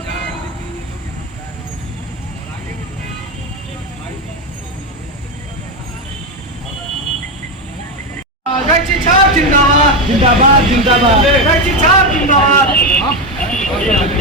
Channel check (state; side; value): normal; both; correlation 0.11